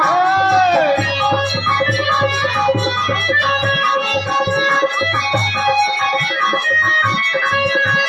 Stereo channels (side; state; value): both; identical; correlation 1.00